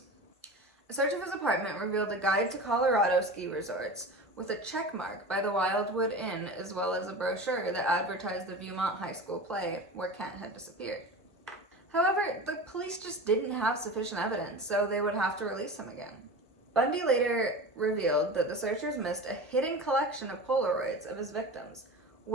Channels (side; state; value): both; normal; correlation 0.31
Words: A search of his apartment revealed a guide to Colorado ski resorts with a check mark by the Wildwood Inn, as well as a brochure that advertised the Viewmont High School play where Kent had disappeared. However, the police just didn't have sufficient evidence, so they would have to release him again. Bundy later revealed that the searchers missed a hidden collection of Polaroids of his victims,